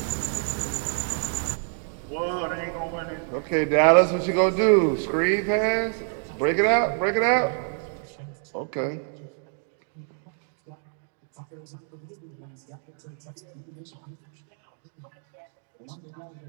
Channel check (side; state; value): left; silent; 55 dB below the other